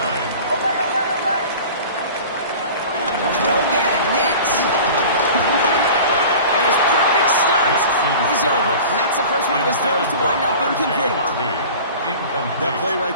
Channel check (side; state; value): both; inverted; correlation -0.40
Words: Throw again, Nix. And his perfect start is over. And that's the first one of his throws to wind up incomplete. That play